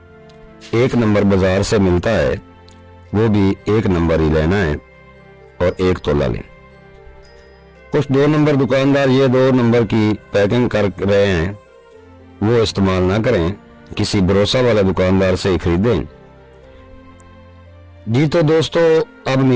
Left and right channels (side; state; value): both; identical; correlation 1.00